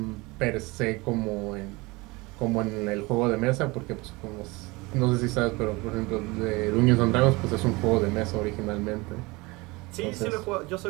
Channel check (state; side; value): quieter; left; 24.0 dB